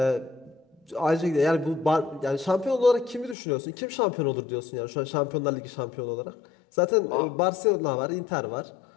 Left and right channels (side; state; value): right; drops out; at 3.4 s